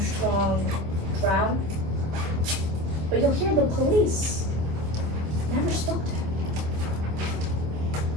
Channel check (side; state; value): left; late; 25 ms